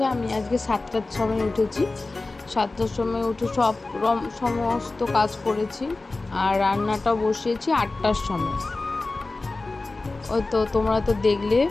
আমি আজকে 7টার সময় উঠেছি। 7টার সময় উঠে সমস্ত কাজ করেছি, আর রান্নাটা বসিয়েছি 8টার সময়। ওই তো তোমরা তো দেখলে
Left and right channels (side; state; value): right; quieter; 3.3 dB